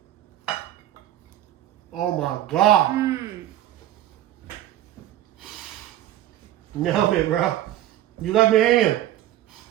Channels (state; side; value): quieter; left; 13.2 dB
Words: it. Oh my God. Nailed it, bro. You left me hanging.